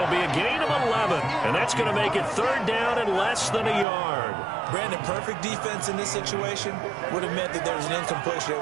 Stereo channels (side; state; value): left; drops out; at 3.9 s